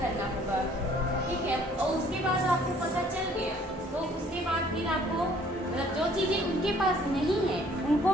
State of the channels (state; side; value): normal; both; correlation 0.58